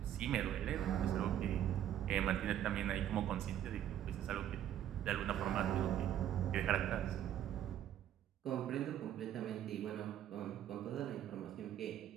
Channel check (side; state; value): left; quieter; 11.1 dB